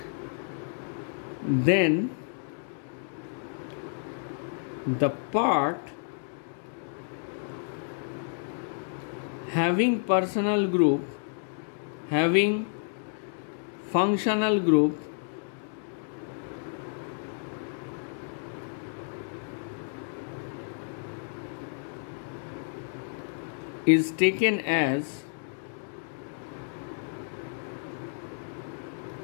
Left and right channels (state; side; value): silent; right; digital silence